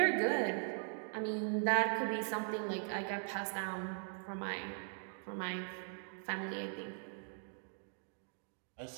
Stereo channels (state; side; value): silent; left; 51 dB below the other